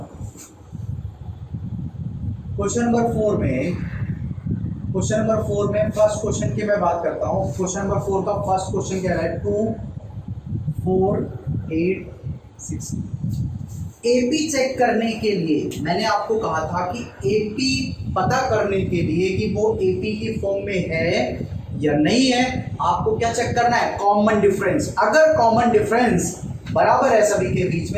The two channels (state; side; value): identical; both; correlation 1.00